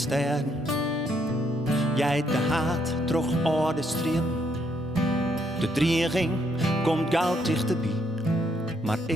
Jij de haat troch orde stream. De dreiging komt gauw dichterbij. Maar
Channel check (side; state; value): both; normal; correlation 0.73